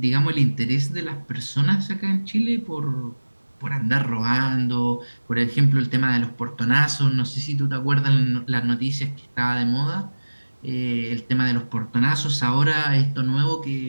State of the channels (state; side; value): inverted; both; correlation -1.00